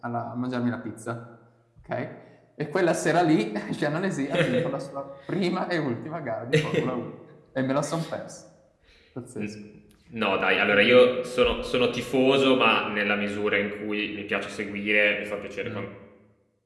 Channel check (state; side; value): identical; both; correlation 1.00